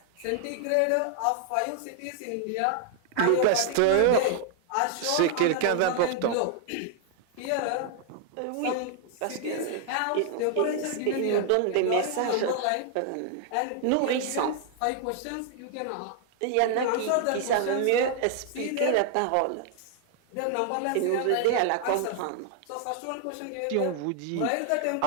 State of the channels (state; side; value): different; both; correlation 0.00